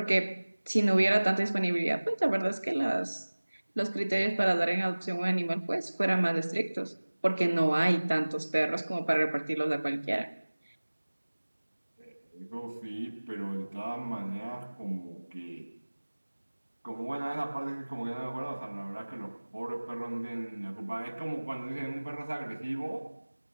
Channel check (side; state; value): both; inverted; correlation -1.00